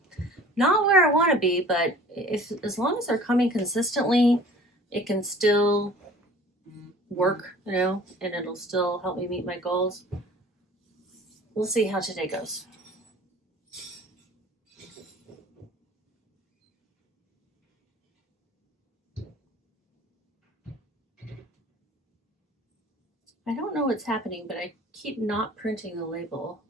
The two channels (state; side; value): normal; both; correlation 0.47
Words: Not where I want to be, but as long as they're coming consistently, it can still work, you know, and it'll still help me meet my goals. We'll see how today goes. I don't know what's happening, but I keep not printing the label